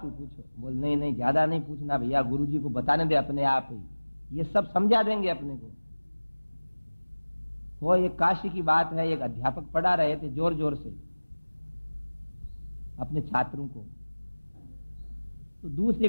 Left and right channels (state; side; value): inverted; both; correlation -1.00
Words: ही पूछो। बोल नहीं नहीं, ज्यादा नहीं पूछना भैया, गुरुजी को बताने दे अपने आप ही, ये सब समझा देंगे अपने को। वो एक काशी की बात है, एक अध्यापक पढ़ा रहे थे जोर जोर से अपने छात्रों को। तो दूसरी